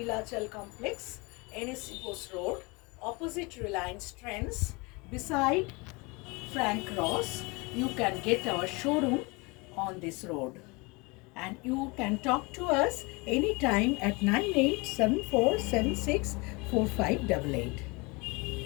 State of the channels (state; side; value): quieter; right; 27.0 dB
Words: Complex, NSC Post Road, opposite Reliance Trends, beside Frank Ross. You can get our showroom on this road, and you can talk to us anytime at 9874764588.